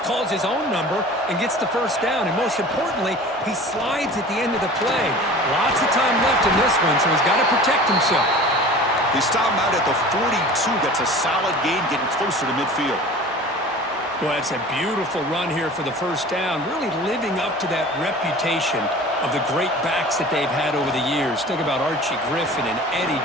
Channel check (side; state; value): both; normal; correlation 0.41